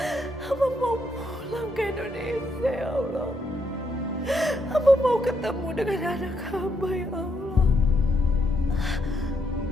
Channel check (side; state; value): both; normal; correlation 0.77